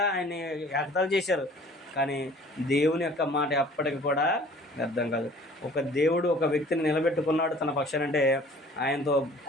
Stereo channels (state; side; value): normal; both; correlation 0.50